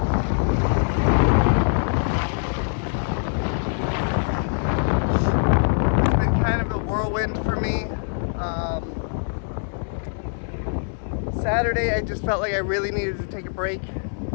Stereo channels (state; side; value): silent; right; digital silence